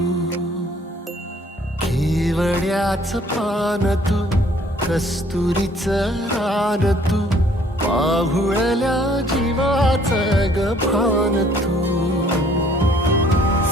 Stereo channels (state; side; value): normal; both; correlation 0.60